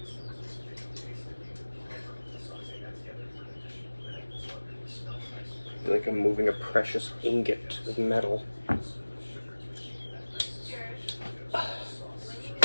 I feel like I'm moving a precious ingot of metal.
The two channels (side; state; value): both; inverted; correlation -1.00